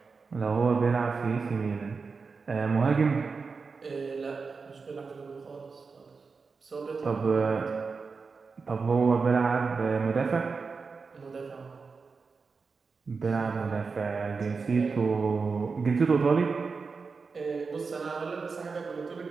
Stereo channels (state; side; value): quieter; left; 4.8 dB